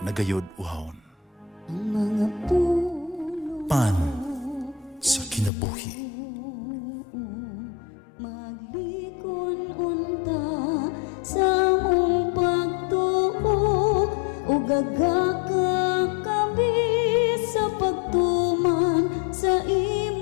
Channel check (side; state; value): right; drops out; at 5.5 s